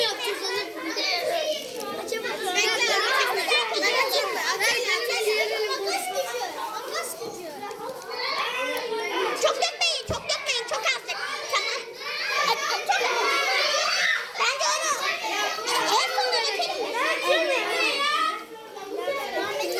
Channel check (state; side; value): identical; both; correlation 1.00